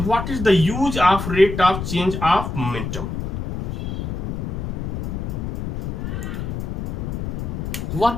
What is the use of rate of change of momentum?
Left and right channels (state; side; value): noise; left; rumble, 4 dB below the sound